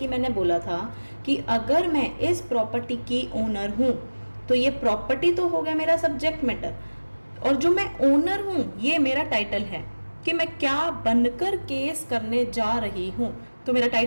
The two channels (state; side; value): inverted; both; correlation -1.00